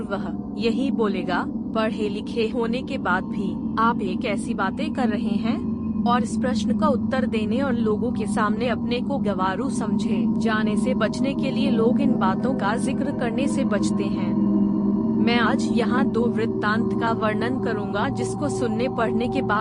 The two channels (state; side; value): identical; both; correlation 1.00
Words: वह यही बोलेगा। पढ़े लिखे होने के बाद भी आप एक ऐसी बातें कर रहे हैं, और इस प्रश्न का उत्तर देने और लोगों के सामने अपने को गंवारू समझे जाने से बचने के लिए लोग इन बातों का जिक्र करने से बचते हैं। मैं आज यहाँ 2 वृत्तांत का वर्णन करूँगा, जिसको सुनने पढ़ने के